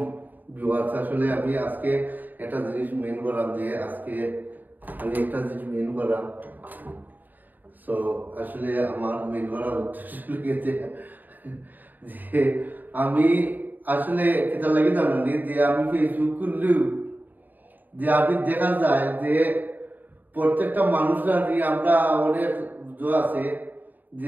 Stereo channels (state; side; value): late; left; 0.087 ms